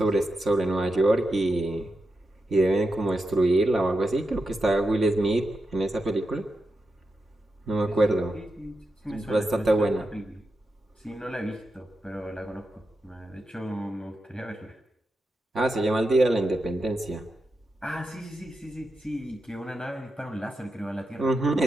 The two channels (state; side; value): normal; both; correlation 0.88